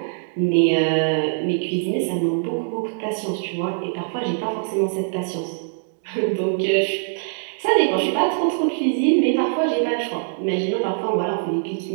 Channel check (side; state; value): left; silent; digital silence